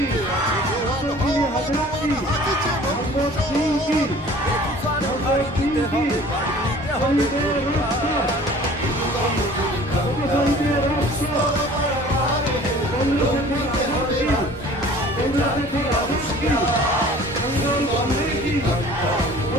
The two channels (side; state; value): both; normal; correlation 0.48